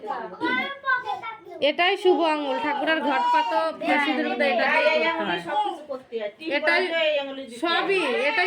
এটাই শুভ আঙ্গুল, ঠাকুরের ঘট পাতো সিঁদুর মধ্যে এটা দিয়ে করতে হয়। সবকিছু করতে হয় টিপ এটাই বাজে এই আঙুলে দিতে হয়। সবই, এটাই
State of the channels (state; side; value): identical; both; correlation 1.00